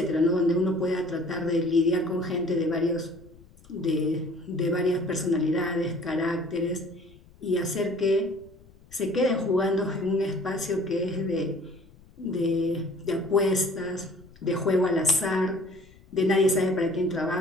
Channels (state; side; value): noise; left; rumble, 25 dB below the sound